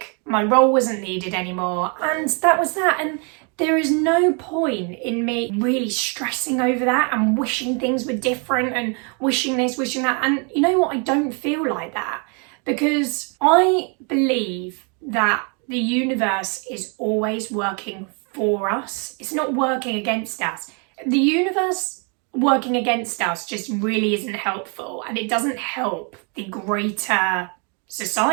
my role wasn't needed anymore, and that was that. And there is no point in me really stressing over that and wishing things were different and wishing this, wishing that. And you know what? I don't feel like that, because I believe that the universe is always working for us. It's not working against us. The universe working against us just really isn't helpful, and it doesn't help the greater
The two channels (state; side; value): quieter; left; 36.5 dB